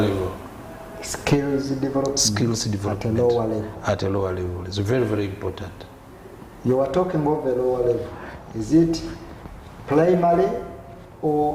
Skills development. Skills development at a lower level. At a lower level. It's very, very important. You are talking of a lower level. Is it primary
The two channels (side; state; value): both; identical; correlation 1.00